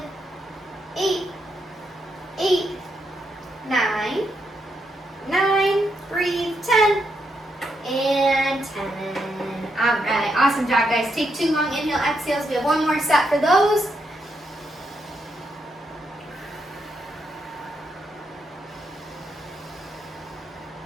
8, 8, 9, 9, breathe, 10, and 10. All right, awesome job, guys. Take 2 long inhale, exhales. We have one more set for those.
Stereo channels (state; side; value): normal; both; correlation 0.80